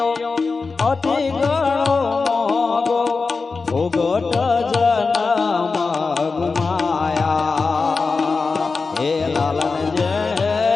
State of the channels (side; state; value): right; quieter; 4.3 dB